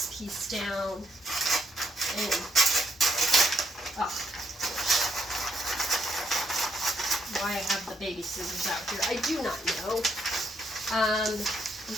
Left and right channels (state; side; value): normal; both; correlation 0.74